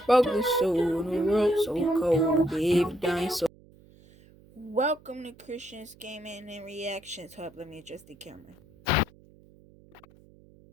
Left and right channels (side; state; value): right; noise; hum, 26 dB below the sound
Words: Broke this soul in a world so cold. Gave dying soul. Welcome to Christian's Gaming and Reactions Hub. Let me adjust the camera.